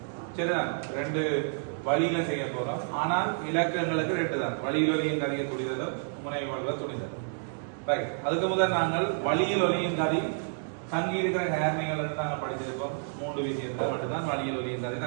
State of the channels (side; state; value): left; silent; digital silence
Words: சரிதான், ரெண்டு வழியில செய்ய போறோம். ஆனால் இலக்கங்களுக்கு ரெண்டு தான், வழியில் ஒலியின் கதையை துணிதலும் முனைவு வலுவ துணிதல். ரைட், அதுக்கு முதல் நாங்கள் வழியில் ஒலியின் கதை தங்கி இருக்கிற நேர்மைகள் நாங்கள் படிச்சிருக்கோம். மூன்று விஷயத்தை மட்டும்தான் வழியில் ஒலியின் கதை